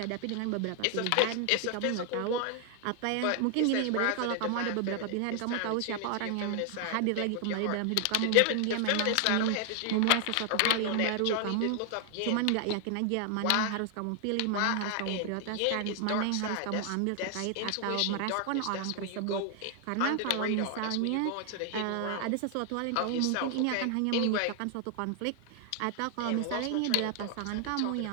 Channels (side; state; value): both; different; correlation 0.00